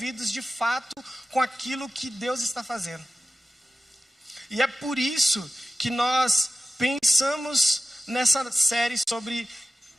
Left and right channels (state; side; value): normal; both; correlation 0.95